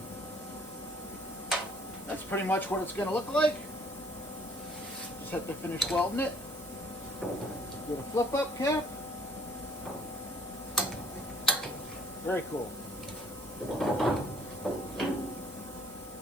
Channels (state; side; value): normal; both; correlation 0.58